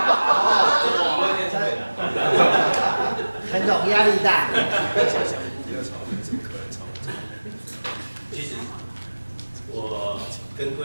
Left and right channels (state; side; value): inverted; both; correlation -1.00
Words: 陈总压力大。其实我跟各